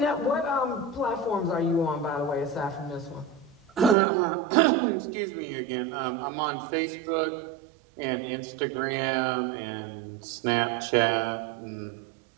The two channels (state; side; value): drops out; left; at 4.0 s